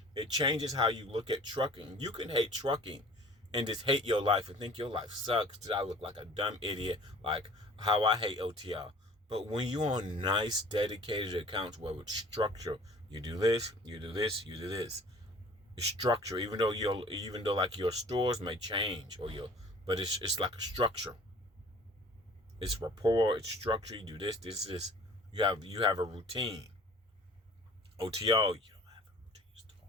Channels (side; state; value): both; normal; correlation 0.48